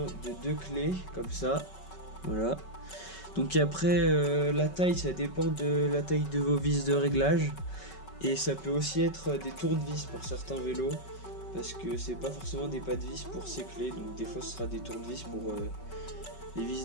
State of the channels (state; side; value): late; right; 5.3 ms